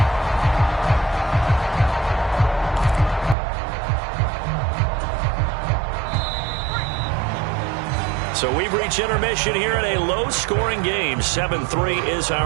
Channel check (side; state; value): left; drops out; at 3.4 s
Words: So we've reached intermission here in a low-scoring game. 7-3 is